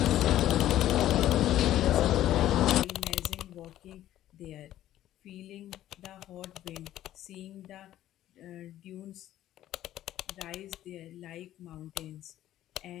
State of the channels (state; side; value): quieter; right; 13.1 dB